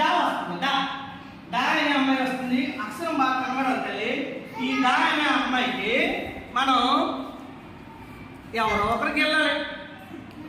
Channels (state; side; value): identical; both; correlation 1.00